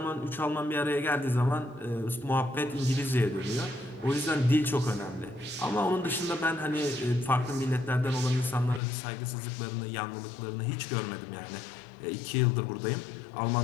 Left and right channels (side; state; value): right; drops out; at 8.8 s